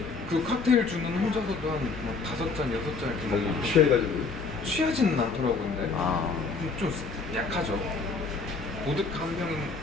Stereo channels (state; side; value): quieter; right; 4.3 dB